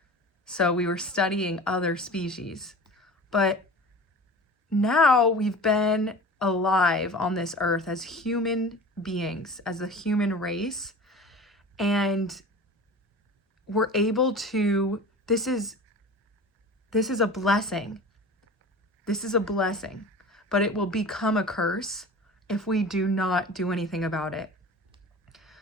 So we were studying other species. But now we've been alive on this earth as human beings, as a human race, and we're able to, this is a blessing. This is a blessing, but it will become a curse if we do not do anything about it.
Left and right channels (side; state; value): both; normal; correlation 0.37